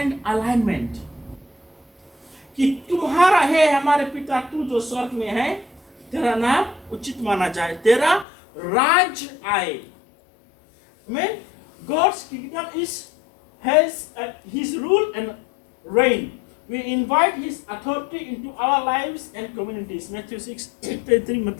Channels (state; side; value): drops out; right; at 8.2 s